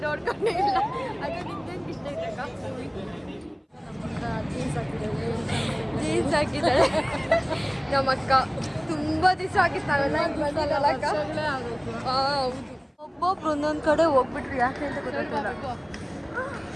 ನೋಡ್ಕೊಂಡೇ ಇಲ್ಲ. ಅದು ನಿಂಗೇನು ಇಷ್ಟ ಐತಕ್ಕ? ಜೀನ್ಸ್ ಹಾಕಿದ್ದಾಳೆ ನಮ್ಮ ಅಕ್ಕ. ತುಂಬ ದಿವಸ ಆಗಿತ್ತು ನಾವೆಲ್ಲ ಬಂದಿಲ್ಲ ಅಕ್ಕ. ಹೌದು, ಒಬ್ಬೊಬ್ರು ಒಂದೊಂದು ಕಡೆ ಹೋಗ್ಬಿಟ್ರು. ಯಾಕೆ ಅಂತ ಗೊತ್ತಾಗ್ತಿಲ್ಲ.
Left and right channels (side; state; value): both; identical; correlation 1.00